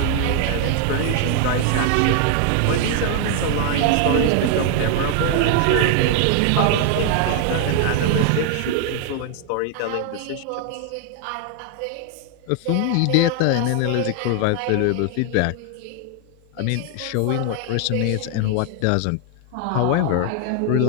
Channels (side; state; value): both; different; correlation 0.00